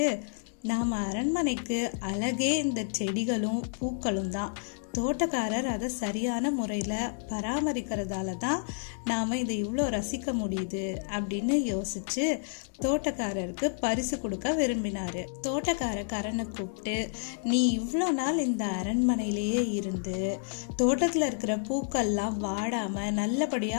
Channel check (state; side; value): silent; right; digital silence